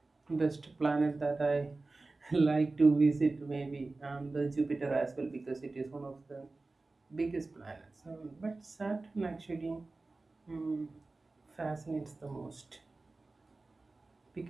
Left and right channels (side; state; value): left; quieter; 3.4 dB